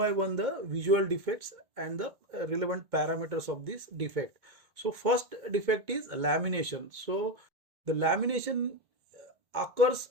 one the visual defects and the relevant parameters of this defect. So first defect is lamination. So the lamination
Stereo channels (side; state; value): left; late; 2.1 ms